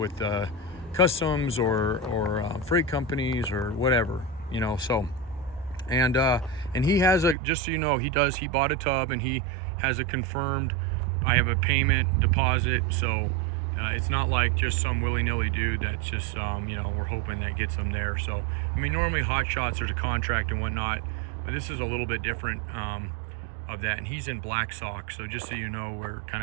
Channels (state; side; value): drops out; left; at 7.4 s